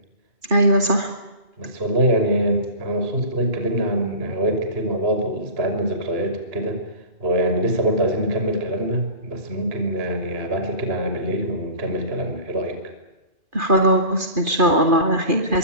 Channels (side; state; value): left; late; 2.4 ms